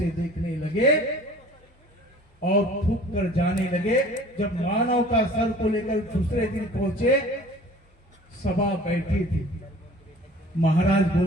देखने लगे और थूक कर जाने लगे। जब मानव का सर को लेकर दूसरे दिन पहुंचे, सभा बैठी थी। महाराज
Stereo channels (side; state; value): both; normal; correlation 0.47